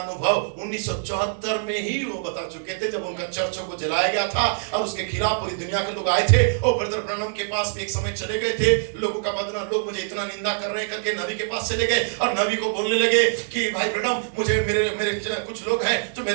1974 में ही वो बता चुके थे, जब उनका चर्चों को जलाया गया था और उसके खिलाफ पूरी दुनिया के लोग आए थे। और ब्रदर ब्रनम के पास भी एक समय चले गए थे, लोगों का बदनाम, लोग मुझे इतना निंदा कर रहे हैं करके नबी के पास चले गए और नबी को बोलने लगे कि भाई ब्रनम मुझे मेरे कुछ लोग हैं जो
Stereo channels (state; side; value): silent; left; digital silence